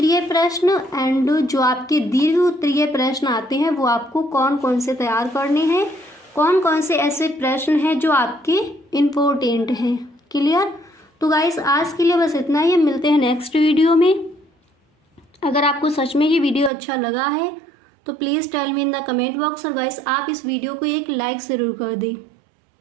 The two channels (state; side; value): drops out; left; at 16.7 s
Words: प्रश्न एंड जो आपके दीर्घ उत्तरीय प्रश्न आते हैं वो आपको कौन कौन से तैयार करने हैं, कौन कौन से ऐसे प्रश्न हैं जो आपके इम्पोर्टेंट हैं। क्लियर? तो गाइस, आज के लिए बस इतना ही। मिलते हैं नेक्स्ट वीडियो में। अगर आपको सच में ये वीडियो अच्छा लगा है तो please tell me in the comment box, और गाइस आप इस वीडियो को एक लाइक ज़रूर कर दें।